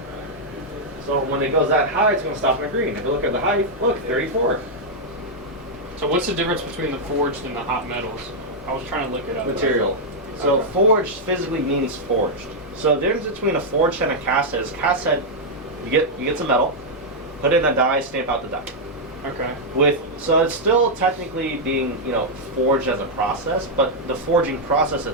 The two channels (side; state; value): both; normal; correlation -0.04